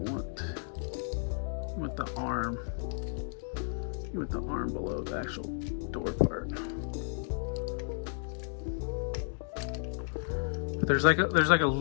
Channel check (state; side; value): silent; right; digital silence